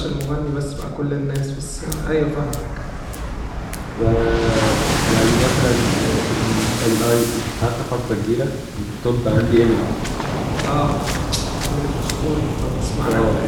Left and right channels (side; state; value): both; identical; correlation 1.00